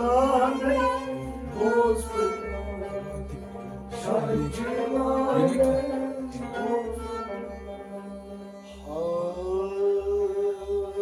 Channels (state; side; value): identical; both; correlation 1.00